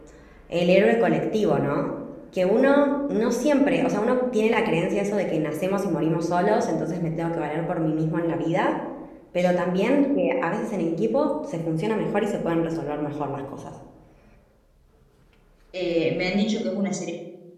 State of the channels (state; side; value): identical; both; correlation 1.00